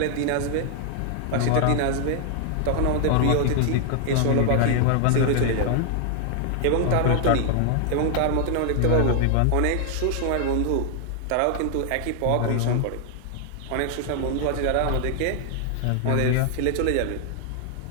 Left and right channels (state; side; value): different; both; correlation 0.00